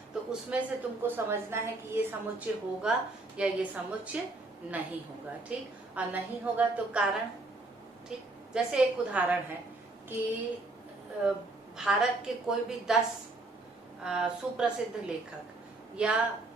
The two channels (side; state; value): left; quieter; 3.0 dB